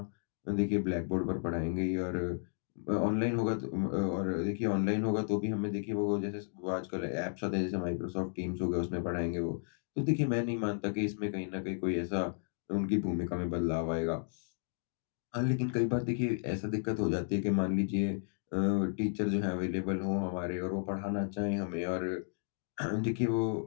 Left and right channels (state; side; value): silent; right; digital silence